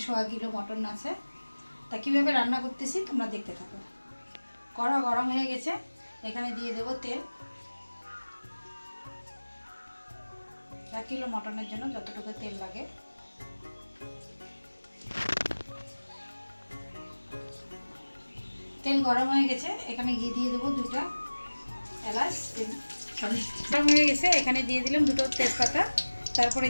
1.5 কিলো মটন আছে। তা কীভাবে রান্না করতেছি তোমরা দেখতে থাকো। কড়া গরম হয়ে গেছে, এখানে দিয়ে দেব তেল। 1 কিলো মটনের জন্য যতটুকু তেল লাগে। তেল গরম হয়ে গেছে, এখানে ঘি দিয়ে দেবো 2টা এলাচ। গরম হয়ে গেছে, এখানে দিয়ে দিলাম 2টো তেজপাতা, তারপরে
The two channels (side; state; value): both; inverted; correlation -1.00